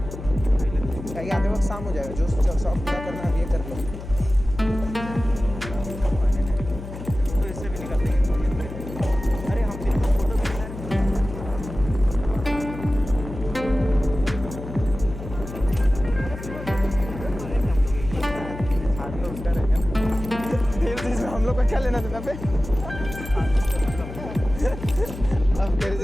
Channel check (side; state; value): left; noise; hum, 11 dB below the sound